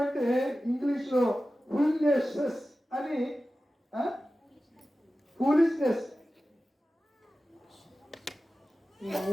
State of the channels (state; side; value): normal; both; correlation 0.95